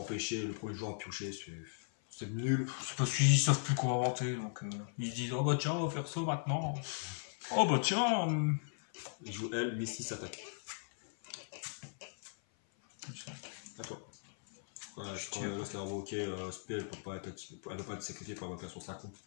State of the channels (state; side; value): silent; right; 53 dB below the other